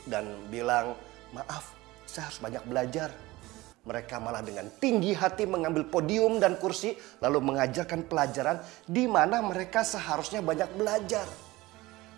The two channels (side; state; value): left; quieter; 19.6 dB